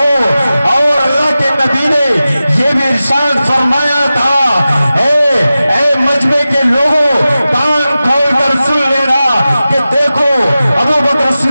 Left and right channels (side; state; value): both; inverted; correlation -0.95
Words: اور اللہ کے نبی نے یہ بھی ارشاد فرمایا تھا اے مجمع کے لوگوں کان کھول کر سن لینا کہ دیکھو ابو بکر